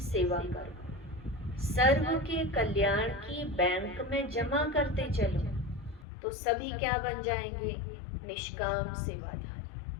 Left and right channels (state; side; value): drops out; right; at 6.1 s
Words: सेवा करो, सर्व के कल्याण की बैंक में जमा करते चलो, तो सभी क्या बन जाएंगे? निष्काम